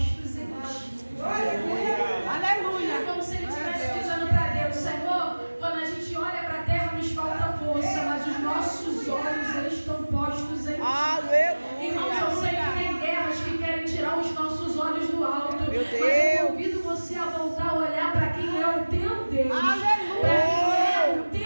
em ti. Aleluia. É como se ele estivesse dizendo para Deus, Senhor, quando a gente olha para a terra nos falta força, mas os nossos olhos estão postos em ti. Aleluia. Irmãos, eu sei que tem guerras que querem tirar os nossos olhos do alto. Meu Deus. Mas eu convido você a voltar a olhar para quem é o teu Deus. Aleluia. Para quem é o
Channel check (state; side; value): inverted; both; correlation -1.00